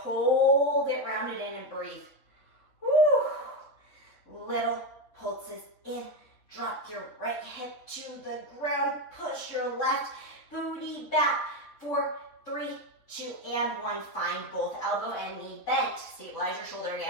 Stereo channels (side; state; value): right; late; 3.7 ms